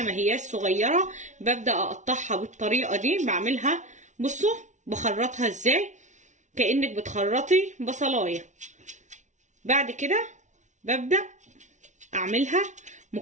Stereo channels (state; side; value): late; left; 0.35 ms